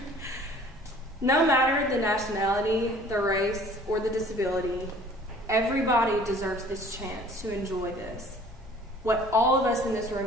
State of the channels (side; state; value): both; normal; correlation 0.52